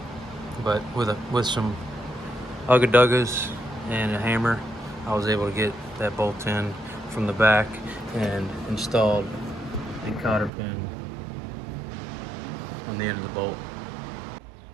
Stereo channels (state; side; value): drops out; left; at 10.5 s